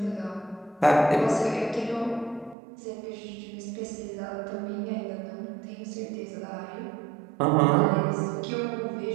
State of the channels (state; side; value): drops out; left; at 2.6 s